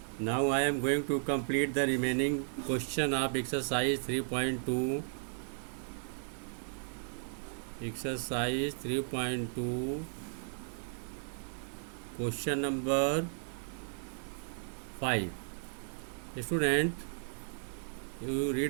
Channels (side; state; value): left; silent; digital silence